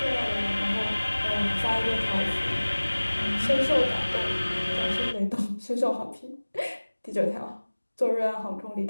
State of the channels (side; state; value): both; inverted; correlation -1.00